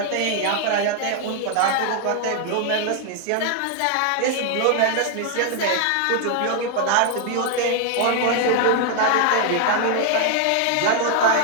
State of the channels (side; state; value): both; different; correlation 0.00